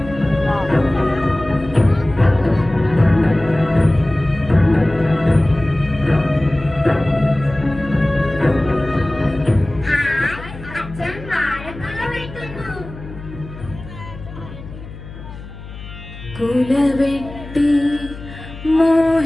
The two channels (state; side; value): noise; left; hum, 14 dB below the sound